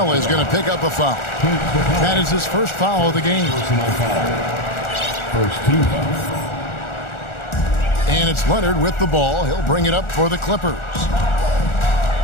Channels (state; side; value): late; right; 1.4 ms